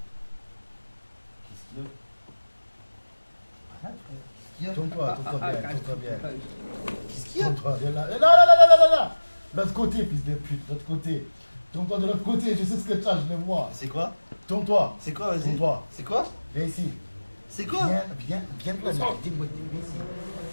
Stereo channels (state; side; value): inverted; both; correlation -1.00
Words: Qu'est-ce qu'il y a? Arrête, frère. Qu'est-ce qu'il y a? Tourne-toi bien, tourne-toi bien. Qu'est-ce qu'il y a? Tourne-toi bien là. Là. L'autre côté, fils de pute, l'autre côté. Tourne-toi de l'autre côté, je sais ce que tu as, je le vois. C'est quoi? Tourne-toi. C'est quoi, vas-y? Tourne-toi. C'est quoi? Viens ici. C'est quoi? Viens de là. Dis-moi, viens ici.